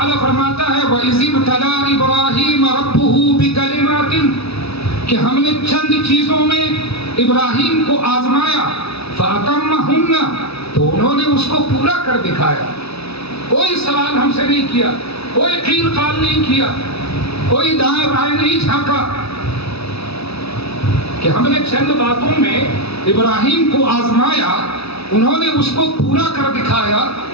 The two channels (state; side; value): late; right; 0.78 ms